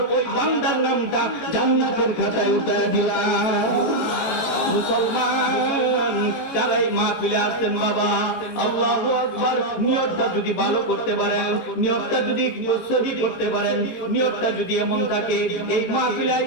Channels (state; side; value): late; right; 18 ms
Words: ওই বান্দার নামটা জান্নাতের খাতায় উঠিয়ে দিলাম। মুসলমান, যারা এই মাহফিলে আসছেন, বাবা আল্লাহু আকবার, নিয়তটা যদি ভালো করতে পারেন, নিয়তটা যদি সহি করতে পারেন, নিয়তটা যদি এমন থাকে এই মাহফিলে